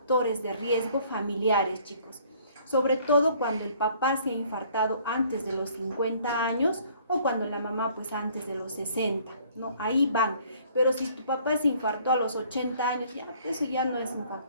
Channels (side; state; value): both; inverted; correlation -0.58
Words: de riesgo familiares, chicos. Sobre todo cuando el papá se ha infartado antes de los 50 años o cuando la mamá pues antes de los 60, ¿no? Ahí van. Pero si tu papá se infartó a los 80 años, ya, eso ya no es un